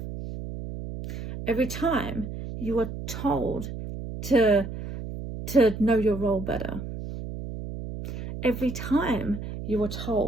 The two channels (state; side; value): noise; right; hum, 8 dB below the sound